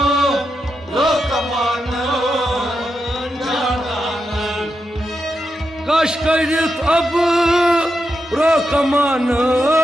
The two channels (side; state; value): both; normal; correlation 0.86